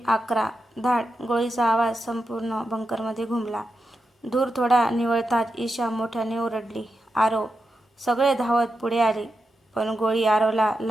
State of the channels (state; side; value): normal; both; correlation 0.88